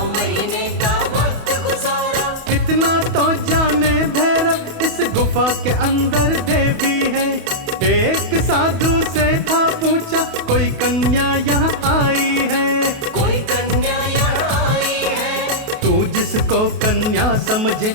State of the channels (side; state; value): left; late; 28 ms